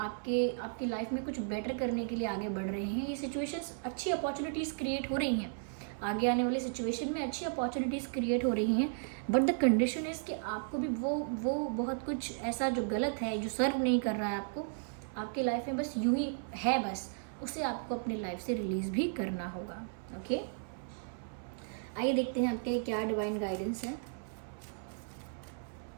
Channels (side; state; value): left; silent; 55 dB below the other